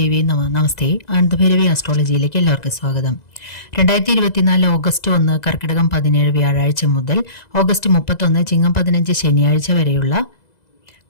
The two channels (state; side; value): late; right; 2.0 ms